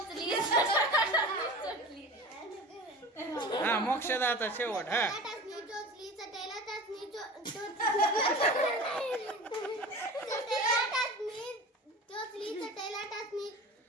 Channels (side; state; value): both; normal; correlation 0.35